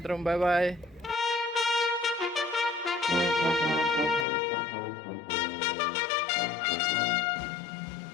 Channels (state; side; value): drops out; right; at 4.2 s